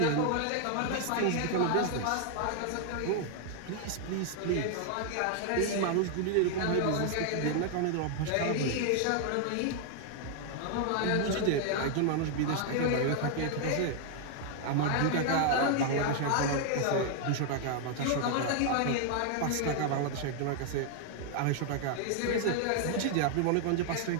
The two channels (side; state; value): both; different; correlation 0.00